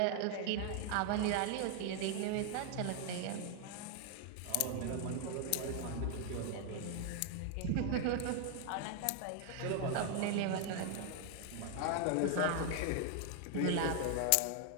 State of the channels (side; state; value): both; different; correlation 0.00